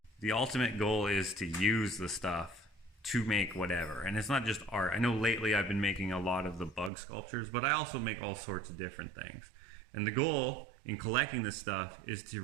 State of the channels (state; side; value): drops out; left; at 6.9 s